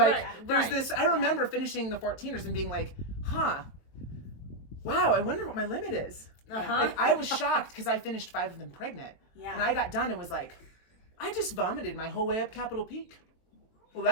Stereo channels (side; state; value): right; late; 23 ms